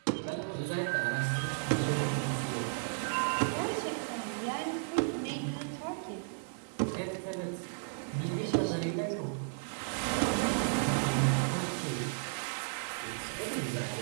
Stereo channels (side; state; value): left; silent; digital silence